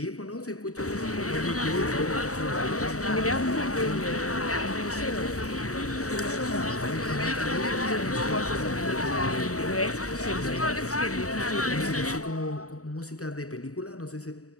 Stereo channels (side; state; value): right; late; 0.65 ms